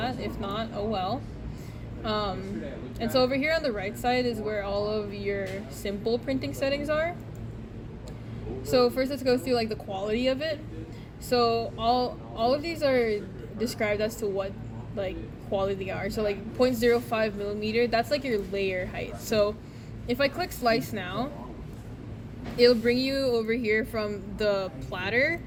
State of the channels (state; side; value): identical; both; correlation 1.00